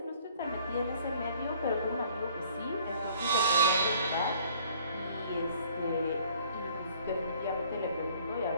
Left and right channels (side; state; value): both; inverted; correlation -0.57